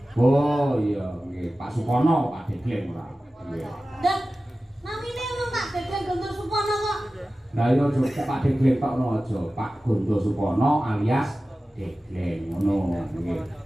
Oh iya nggih Pak Supono Pak Degleng ora. Iya. Dan namine ono Pak Degleng Gontor Supono kok. Lah iya aja Pak Degleng tok no aja. Pak Gondo Supono alias Degleng ngono nggih.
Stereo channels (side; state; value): both; normal; correlation 0.95